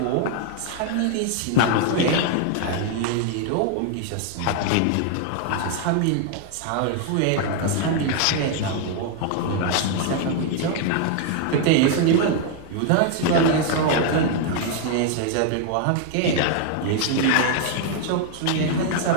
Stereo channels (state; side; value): different; both; correlation 0.00